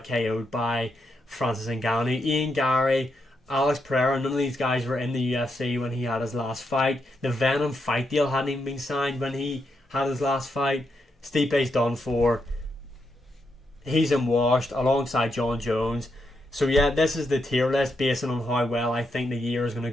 KO'd by Francis Ngannou. Ian Gary, Alex Pereira, none of these guys were in the UFC when he had his last fight. The Venom fight deal hadn't even been signed when he had his last fight. Stipe's done for. He's in washed alongside John Jones. So yeah, this is the tier list based on how well I think the year is going to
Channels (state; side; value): normal; both; correlation 0.82